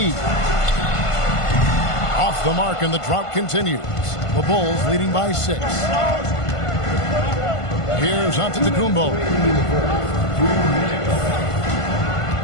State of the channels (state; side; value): late; right; 1.5 ms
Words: Off the mark, and the drought continues. The Bulls leading by 6. Here's Antetokounmpo.